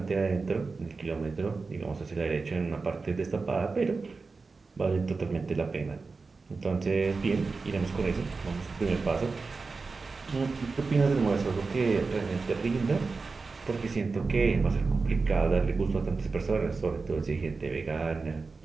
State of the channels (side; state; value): left; quieter; 4.2 dB